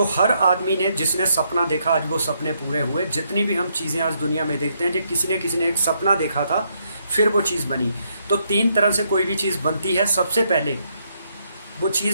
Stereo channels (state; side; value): inverted; both; correlation -0.75